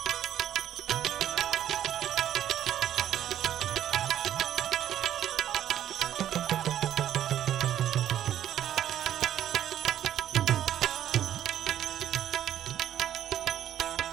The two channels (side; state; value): left; quieter; 11.2 dB